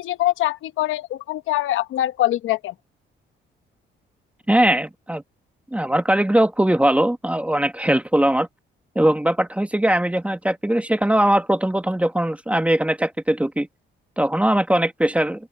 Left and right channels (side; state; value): both; normal; correlation 0.81